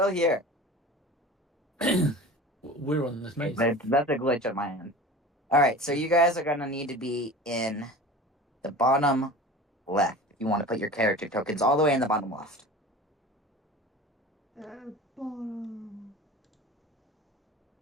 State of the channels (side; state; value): both; normal; correlation 0.37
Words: here? We're on this maze. That's a glitch on my end. Alright, so you guys are gonna need to be in the bottom left. If you want to put your character tokens all the way in the bottom left. Bottom.